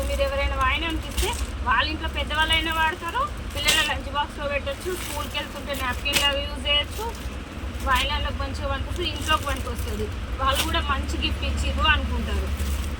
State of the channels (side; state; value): both; identical; correlation 1.00